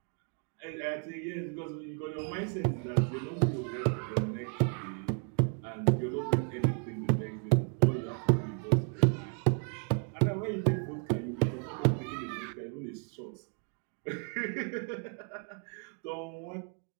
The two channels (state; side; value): quieter; left; 39.9 dB